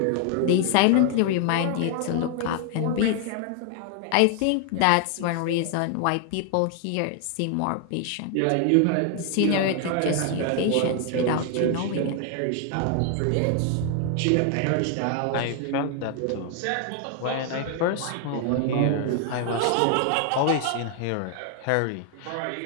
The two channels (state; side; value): different; both; correlation 0.00